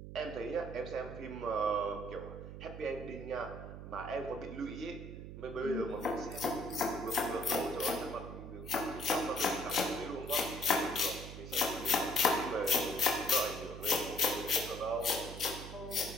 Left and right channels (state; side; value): noise; right; hum, 10 dB below the sound